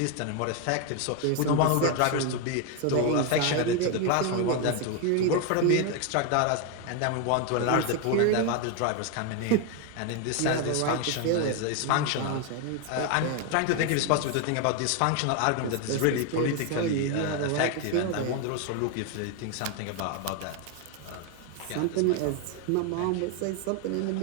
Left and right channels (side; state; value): both; different; correlation 0.01